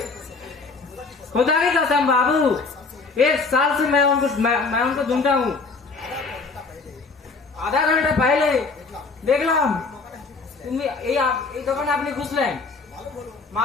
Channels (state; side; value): quieter; right; 4.2 dB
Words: खुदा की कसम बाबू, 1 साल से मैं उनको ढूंढता हूँ। आधा घंटा पहले देखलाम তুমি এই দোকানে আপনি ঘুষলেন,